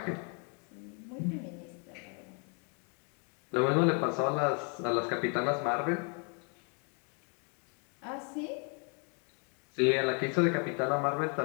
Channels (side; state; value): right; quieter; 38.2 dB